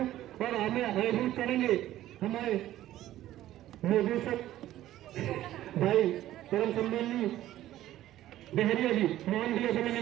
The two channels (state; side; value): quieter; left; 13.8 dB